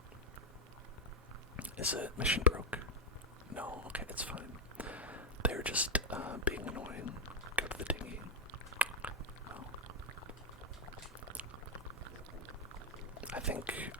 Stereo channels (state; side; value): normal; both; correlation 0.03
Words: Is it mission broke? No, okay, it's fine. They're just being annoying. Go to the dinghy. Oh. I think,